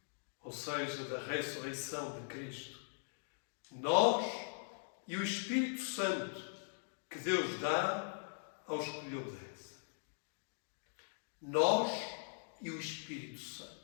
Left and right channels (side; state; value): right; silent; digital silence